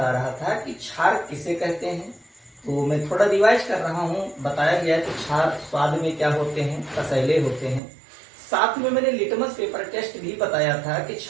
रहा था कि क्षार किसे कहते हैं। तो मैं थोड़ा रिवाइज कर रहा हूँ। बताया गया कि क्षार स्वाद में क्या होते हैं, कसैले होते हैं। साथ में मैंने लिटमस पेपर टेस्ट भी बताया था कि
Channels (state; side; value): drops out; left; at 7.8 s